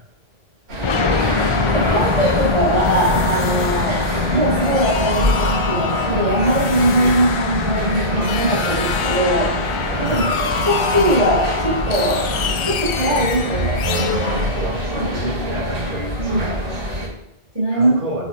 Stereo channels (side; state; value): left; late; 1.4 ms